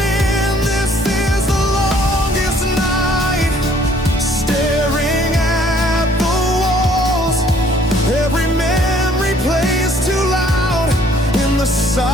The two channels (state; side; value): normal; both; correlation 0.60